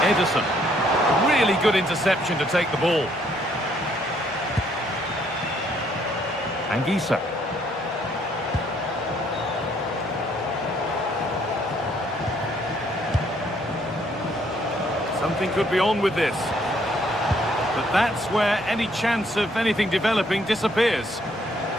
Ederson. Really good interception to take the ball. Anguissa. Something could be on with this. But that's where any chance of anything developing disappears.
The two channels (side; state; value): both; normal; correlation 0.67